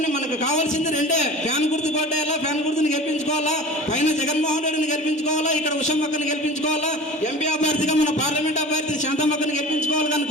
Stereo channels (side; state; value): both; normal; correlation 0.37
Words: మనకు కావాల్సింది రెండే, ఫ్యాన్ గుర్తు కొట్టేయాలా, ఫ్యాన్ గుర్తుని గెలిపించుకోవాలా, పైన జగన్మోహన్ రెడ్డిని గెలిపించుకోవాలా, ఇక్కడ ఉషమ్మక్కని గెలిపించుకోవాలా, ఎంపీ అభ్యర్థిగా మన పార్లమెంట్ అభ్యర్థి శాంతమ్మక్కని గెలిపించుకోవాలి కానీ